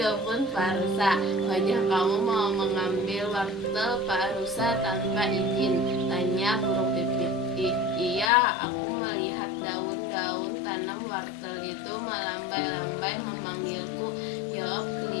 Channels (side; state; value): right; drops out; at 8.3 s